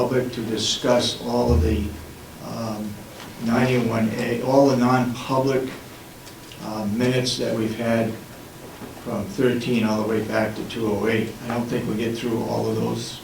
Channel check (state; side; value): identical; both; correlation 1.00